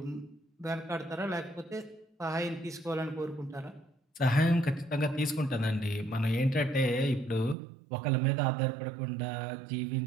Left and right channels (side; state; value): left; drops out; at 7.6 s